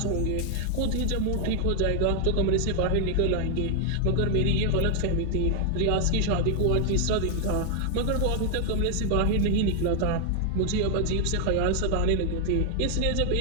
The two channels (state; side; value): different; both; correlation 0.00